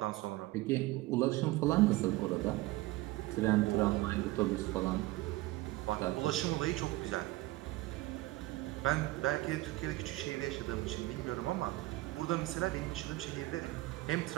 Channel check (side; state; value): left; quieter; 18.9 dB